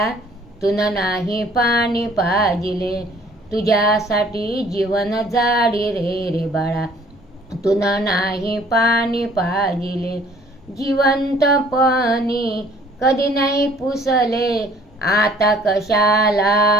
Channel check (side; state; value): both; normal; correlation 0.56